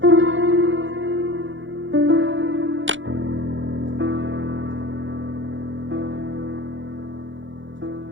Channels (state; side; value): late; left; 0.56 ms